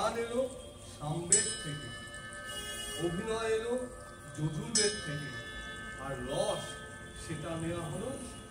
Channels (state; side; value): identical; both; correlation 1.00